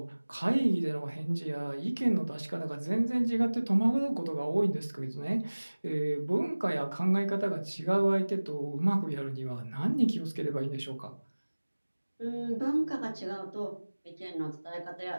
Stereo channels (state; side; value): inverted; both; correlation -1.00